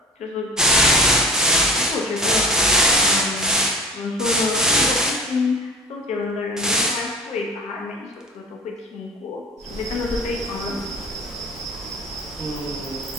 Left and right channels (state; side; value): normal; both; correlation 0.38